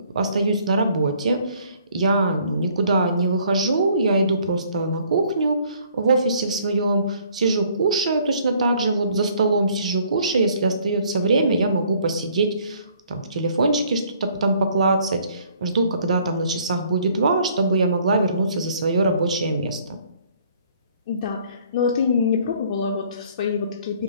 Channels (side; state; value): both; inverted; correlation -0.61